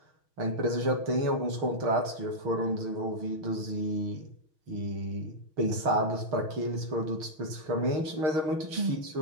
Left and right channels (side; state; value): left; late; 6.3 ms